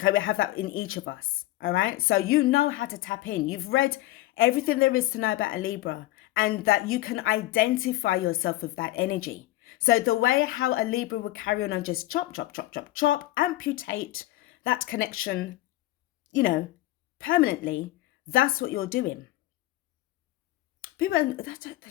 we have that in each of us. All right. So you know how to tap in. You've read everything there is to know about a Libra, and that you can identify yourself with that energy. So the way how a Libra would carry on and just chop, amputate that connection, permanently, that's what you're doing. People they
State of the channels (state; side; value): quieter; right; 16.8 dB